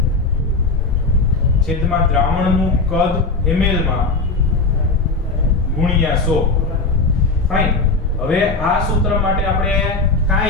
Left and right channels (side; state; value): right; quieter; 3.6 dB